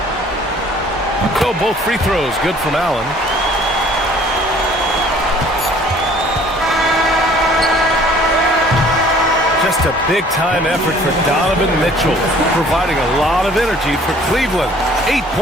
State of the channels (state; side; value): normal; both; correlation 0.54